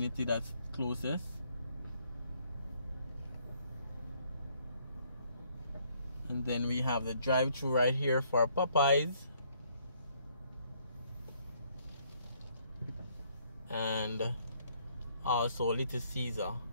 that's closest. And then we have the drive-thru right here for Popeyes. And also Little Caesar.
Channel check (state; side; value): inverted; both; correlation -0.67